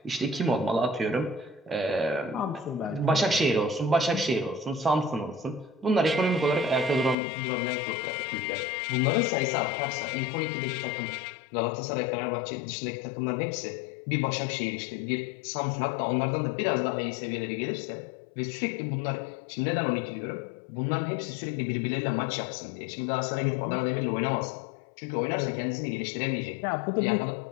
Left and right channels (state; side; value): drops out; right; at 7.2 s